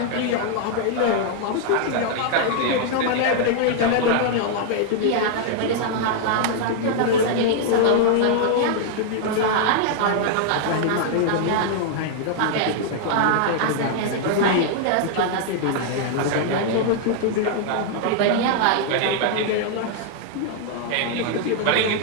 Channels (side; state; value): both; different; correlation -0.01